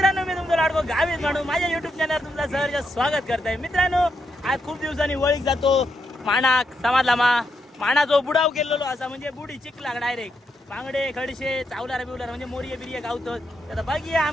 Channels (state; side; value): normal; both; correlation 0.81